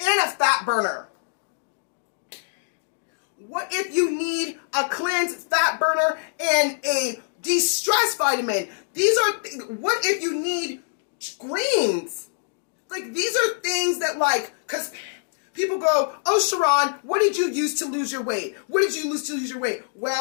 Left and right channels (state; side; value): silent; right; digital silence